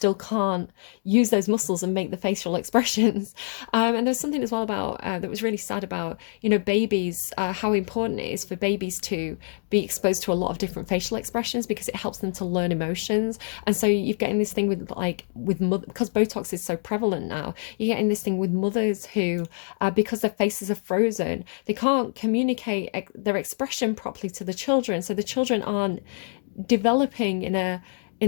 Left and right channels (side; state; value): right; silent; digital silence